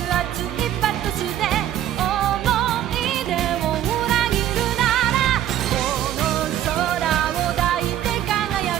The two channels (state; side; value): quieter; left; 11.7 dB